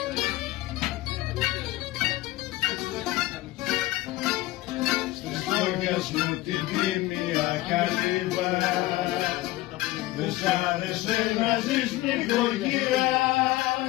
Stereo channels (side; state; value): right; quieter; 18.0 dB